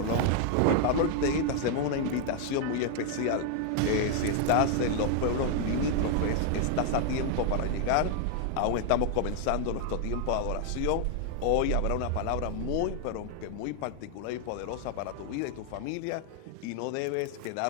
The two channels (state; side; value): different; both; correlation 0.00